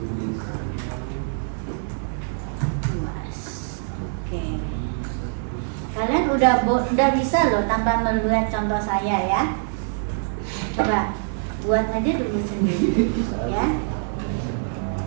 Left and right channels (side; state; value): left; silent; digital silence